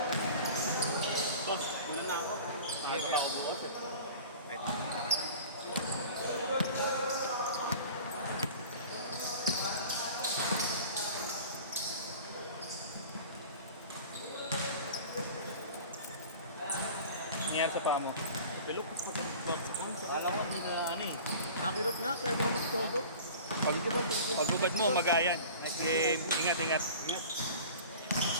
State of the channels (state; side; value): inverted; both; correlation -0.41